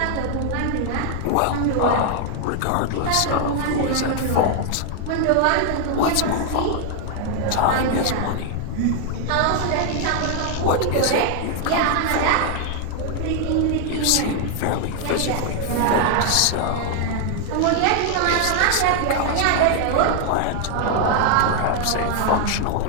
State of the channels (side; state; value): both; different; correlation 0.00